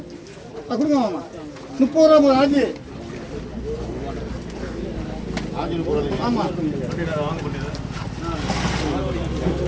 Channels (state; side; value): identical; both; correlation 1.00